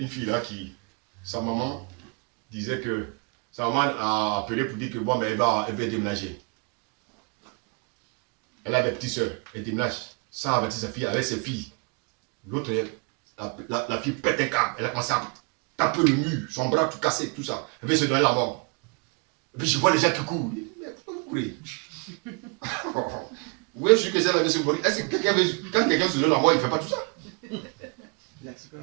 fille là qui, sa maman disait que sa maman a appelé pour dire que bon, mais elle va déménager. Elle a des petites soeurs, elle déménage sans avertir sa fille avec ses filles. L'autre, la fille pète un câble, elle a commencé à taper le mur, son bras tout cassé, tout ça. Elle veut se donner la mort. Et puis je vois les gens qui courent. Mais pourquoi vous courez? Oui, je suis que ça veut se mourir. Est-ce que quelqu'un veut, quand quelqu'un se donne la mort, il ne fait pas tout ça?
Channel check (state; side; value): quieter; left; 34.5 dB